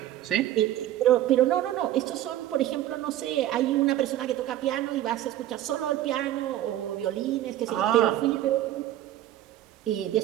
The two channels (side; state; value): left; quieter; 13.1 dB